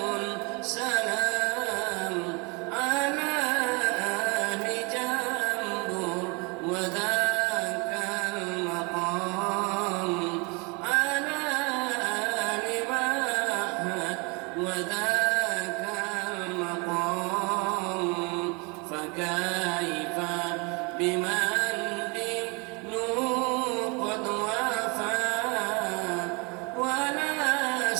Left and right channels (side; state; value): left; quieter; 30.3 dB